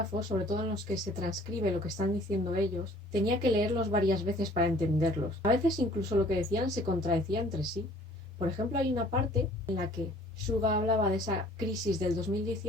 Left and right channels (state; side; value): normal; both; correlation 0.54